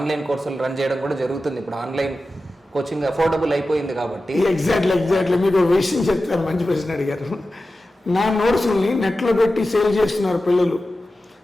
కోర్సులు రన్ చేయడం కూడా జరుగుతుంది. ఇప్పుడు ఆన్లైన్ కోచింగ్ అఫోర్డబుల్ అయిపోయింది కాబట్టి. ఎగ్జాక్ట్లీ మీకు ఒక విషయం చెప్తాను, మంచి ప్రశ్న అడిగారు. నా నోట్స్ని నెట్లో పెట్టి సేల్ చేస్తున్నారు పిల్లలు.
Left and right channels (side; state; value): both; normal; correlation 0.94